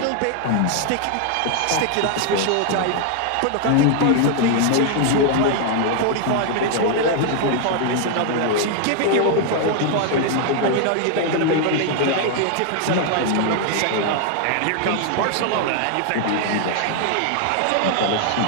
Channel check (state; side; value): different; both; correlation 0.00